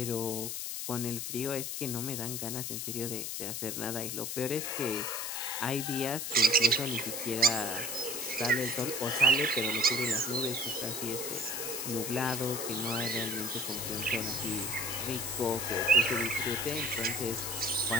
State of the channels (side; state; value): left; noise; hiss, 4 dB below the sound